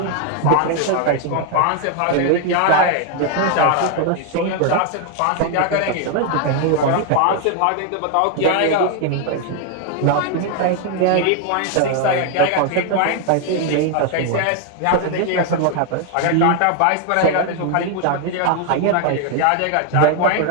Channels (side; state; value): both; different; correlation 0.00